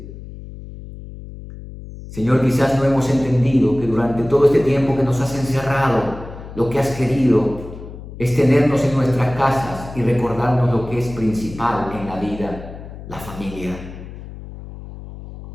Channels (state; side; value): noise; left; hum, 13 dB below the sound